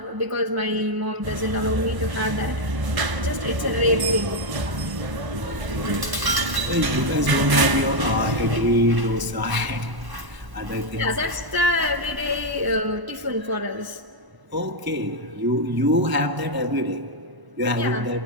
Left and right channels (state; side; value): late; left; 1.0 ms